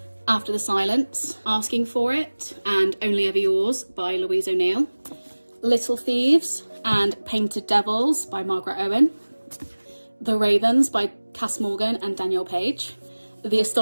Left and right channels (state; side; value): inverted; both; correlation -1.00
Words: After the Silence, Asking for It, and Only Ever Yours by Louise O'Neill. Little Thieves and Painted Devils by Margaret Owen. The Ravens by Cass Morgan and Danielle Page. The